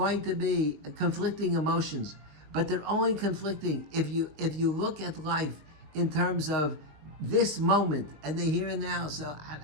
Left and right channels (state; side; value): late; left; 20 ms